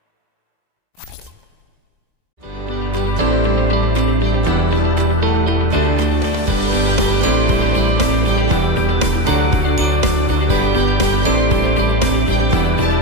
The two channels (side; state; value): left; late; 2.0 ms